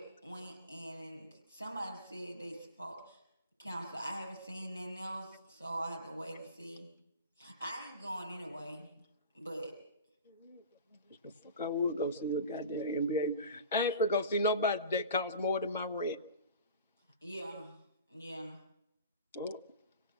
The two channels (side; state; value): both; inverted; correlation -0.36